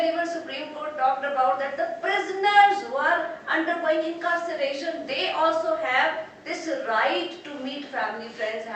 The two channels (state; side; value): identical; both; correlation 1.00